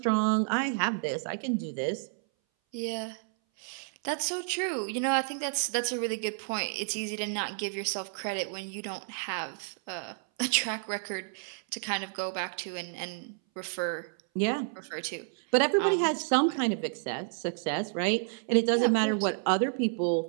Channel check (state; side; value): silent; left; 57 dB below the other